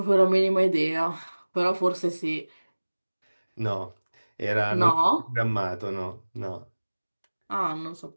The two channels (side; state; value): both; inverted; correlation -1.00